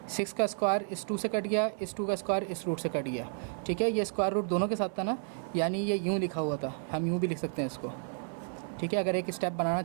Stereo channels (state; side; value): silent; left; 57 dB below the other